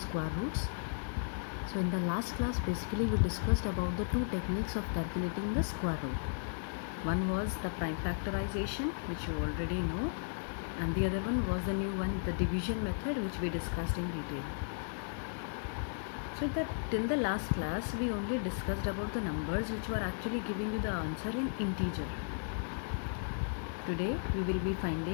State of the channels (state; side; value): silent; right; digital silence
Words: roots. So in the last class basically we discussed about the two techniques of calculating the square root. One was the prime factorization, which you already know, and the other one was the new one, the division method, which we discussed in detail. So till the last class we only discussed about the numbers which were actually giving you the answer in integer. Today we will be